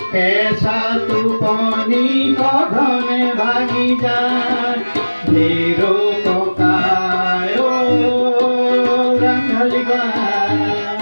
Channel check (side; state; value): both; inverted; correlation -1.00